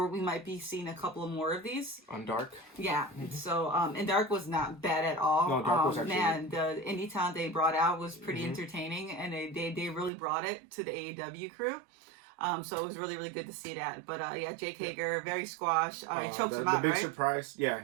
might be seeing a couple of more of these. On Dark. Yeah. So and Dark was not bad at all. No, Dark was actually... the indie talent they brought out was pretty entertaining, and they really brought it to the AEW crew. So it was really, really good to see that. But Jake Hager, very squashed. He chokes him out, the big right? surprise,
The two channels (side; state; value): left; drops out; at 10.1 s